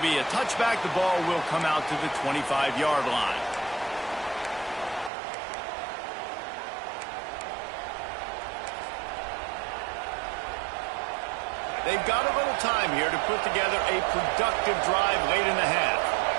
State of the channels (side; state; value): left; drops out; at 5.1 s